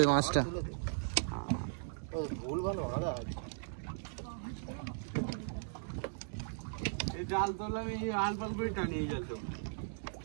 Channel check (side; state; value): left; silent; digital silence